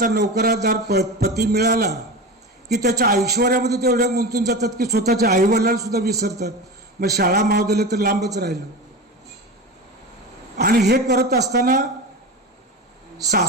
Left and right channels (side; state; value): both; normal; correlation 0.26